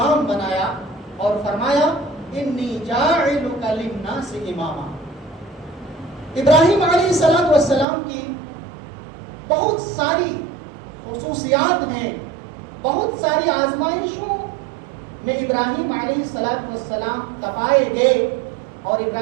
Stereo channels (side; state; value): left; drops out; at 7.9 s